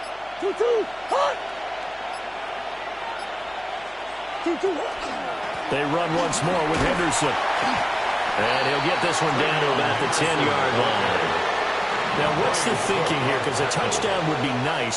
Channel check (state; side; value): noise; left; hum, 28 dB below the sound